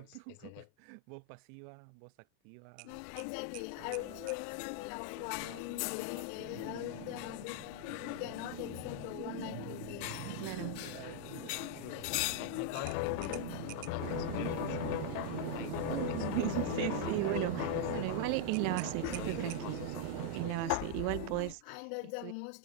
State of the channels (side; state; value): both; different; correlation -0.01